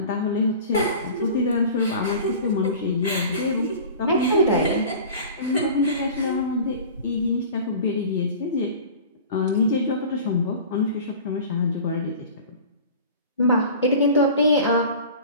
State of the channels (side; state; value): both; inverted; correlation -0.39